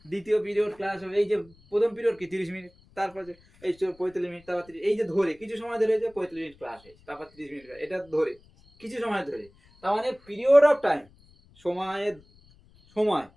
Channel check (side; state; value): left; noise; rumble, 28 dB below the sound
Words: দ্বিতীয় পিরিয়ড ক্লাস হবে, এই যে প্রথম পিরিয়ড কি 30 মিনিট, তারপরে এই 45 মিনিট, তারপর 30, এই যে ধরে কিছু সময় ধরে যে 45 মিনিট ক্লাস হয়েছে, তারপর 30 মিনিট, এটা ধরে কিছু সময় ধরে। তার মানে পিরিয়ড অফ টাইম, সময়ের সময়,